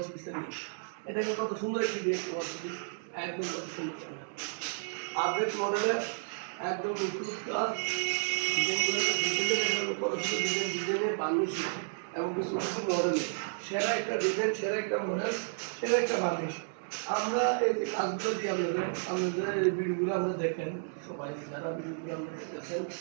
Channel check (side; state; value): left; silent; digital silence